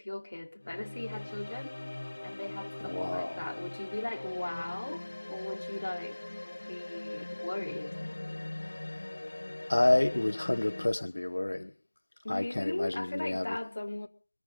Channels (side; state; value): both; inverted; correlation -1.00